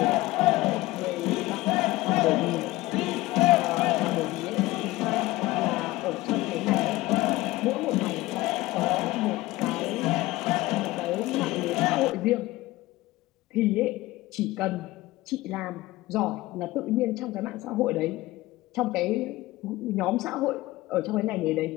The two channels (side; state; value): right; quieter; 18.7 dB